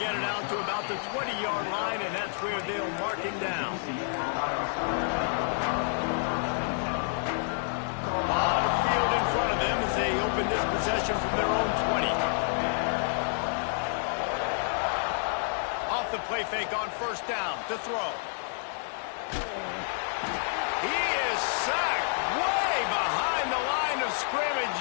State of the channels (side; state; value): right; silent; 59 dB below the other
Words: get it out to about the 20-yard line, and that's where they'll mark him down. On the field in front of them as they open this possession from their own 20. Off the play fake on first down to throw. He is sacked way behind the line of scrimmage.